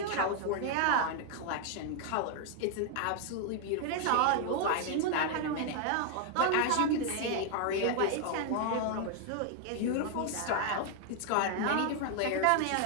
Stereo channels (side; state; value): both; different; correlation 0.00